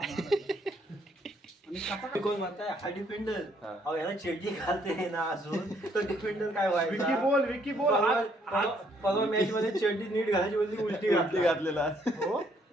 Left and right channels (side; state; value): both; normal; correlation 0.68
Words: कोण म्हणताय हा डिफेंडर. अहो याला चड्डी घालते ना अजून तर डिफेंडर काय विकी व्हायचा. बोल परवा मॅच मध्ये चड्डी नीट घालायची बोलली उलटी घातलेला. हो